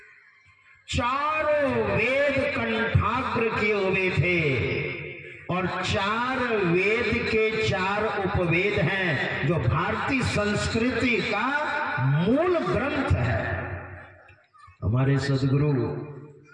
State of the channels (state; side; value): identical; both; correlation 1.00